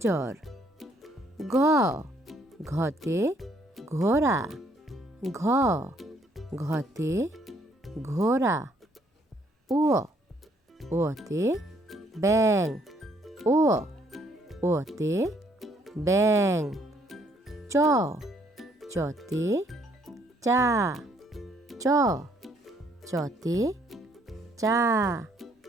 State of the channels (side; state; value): both; normal; correlation 0.67